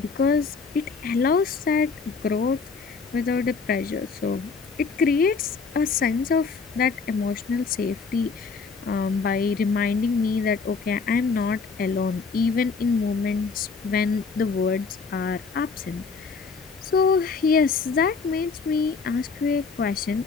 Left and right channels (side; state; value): right; quieter; 4.9 dB